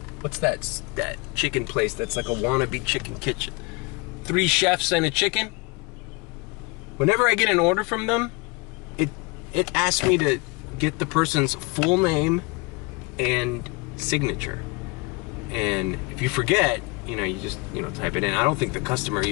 what's that chicken place that's like a wannabe chicken kitchen? 3 chefs and a chicken. Whenever I get an order from them, it asks me to get the person's full name and signature. And if you forget, you just, type it in. I don't think the customer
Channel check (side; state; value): right; quieter; 28.0 dB